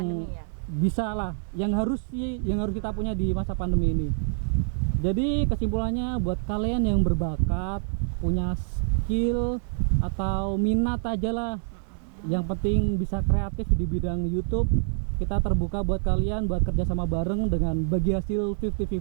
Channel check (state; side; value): silent; left; digital silence